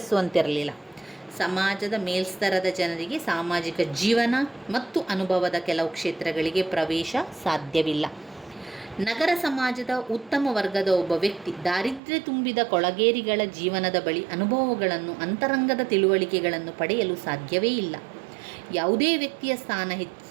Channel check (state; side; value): drops out; left; at 12.0 s